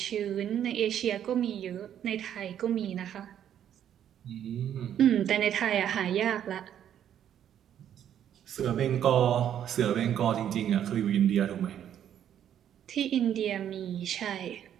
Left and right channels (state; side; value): quieter; left; 10.0 dB